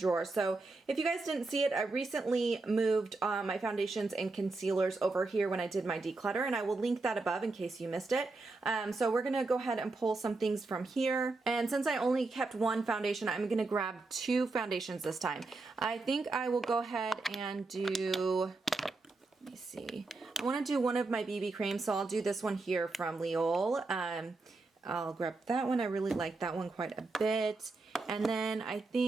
So if you guys didn't see it, I recently moved my foundations and concealers over here when I did my declutter, and I will link that above in case you missed it. So we're gonna go ahead and pull some things from here. And since I only kept one foundation, I'm gonna grab two foundations this time. I think I will go ahead and do, let me see. I wanna do one of my BB creams, so I'll do this one here from L'Oreal. I'll grab that one. I really like that one quite a bit. And then I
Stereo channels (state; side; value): quieter; left; 3.5 dB